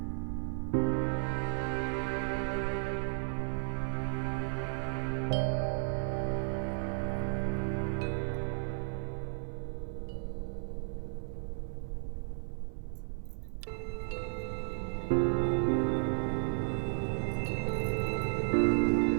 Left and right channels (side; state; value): left; silent; 55 dB below the other